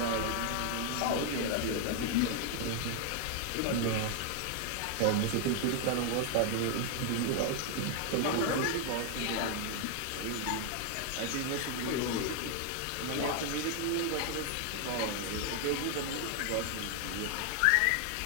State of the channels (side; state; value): both; different; correlation 0.00